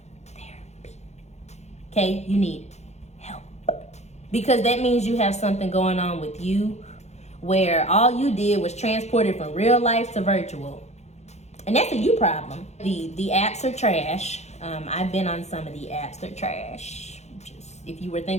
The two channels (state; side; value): late; right; 0.32 ms